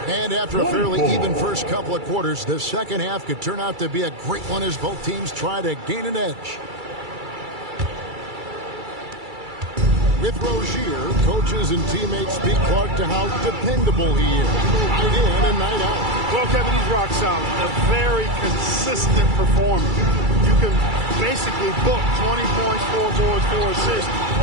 And after a fairly even first couple of quarters, the second half could turn out to be a great one as both teams try to gain an edge. With Rozier, coaches and teammates speak Clark to how dependable he is. Night in and night out. Well, Kevin, he's rock solid. A very consistent performer. You can basically book 20 points, 4 boards, 4 assists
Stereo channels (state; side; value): late; left; 2.3 ms